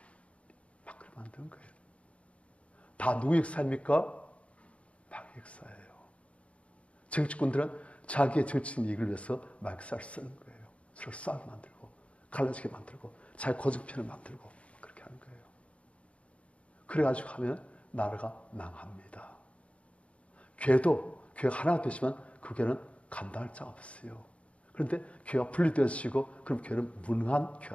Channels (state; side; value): late; right; 0.062 ms